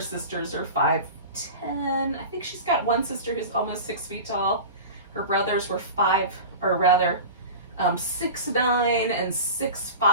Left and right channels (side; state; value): both; inverted; correlation -0.32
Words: are 5'10". I think she's got one sister who's almost 6 feet tall. Her brothers were 6'9" and 6'5".